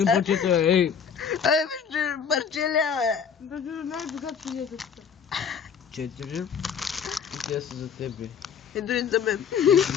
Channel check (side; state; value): right; quieter; 7.0 dB